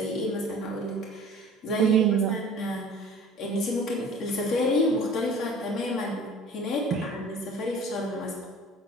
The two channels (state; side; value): normal; both; correlation 0.45